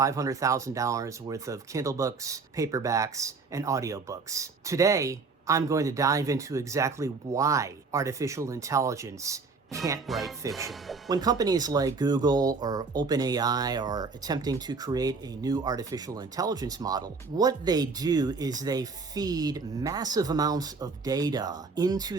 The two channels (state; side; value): quieter; left; 4.5 dB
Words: worth of Kindle books, paperbacks, and audiobooks. Today, I'm going to dive into exactly why artificial intelligence can't write fiction. When companies like Google or OpenAI are attempting to create a new artificial intelligence model, what they do is they feed massive amounts of data